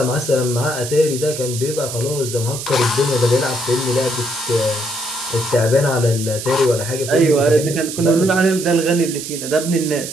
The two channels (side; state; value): right; noise; hiss, 8 dB below the sound